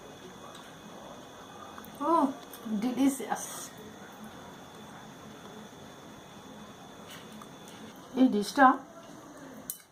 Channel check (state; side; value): identical; both; correlation 1.00